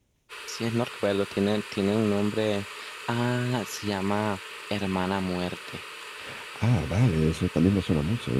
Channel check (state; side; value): identical; both; correlation 1.00